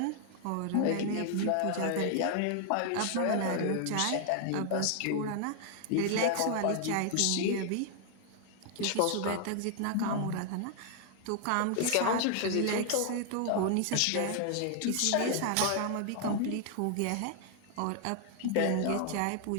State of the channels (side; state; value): both; different; correlation 0.00